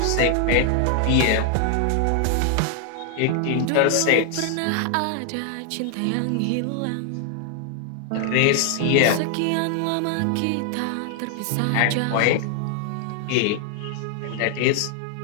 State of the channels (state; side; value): different; both; correlation 0.00